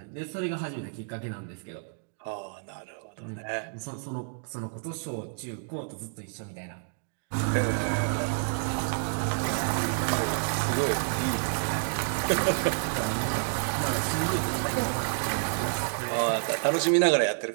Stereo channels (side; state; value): left; silent; digital silence